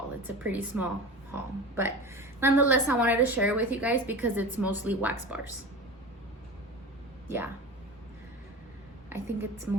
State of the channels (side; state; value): both; normal; correlation 0.31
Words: it's a pretty small haul, but nonetheless I wanted to share it with you guys because it's mostly wax bars. Yeah, I think it's